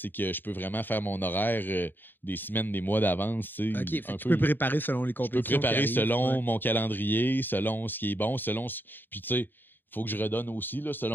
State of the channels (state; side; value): late; right; 0.094 ms